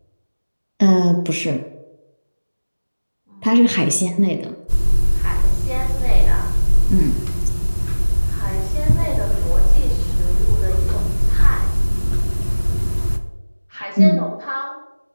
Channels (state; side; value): inverted; both; correlation -1.00